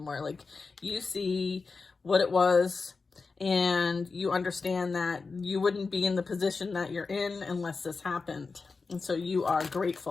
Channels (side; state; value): right; quieter; 4.4 dB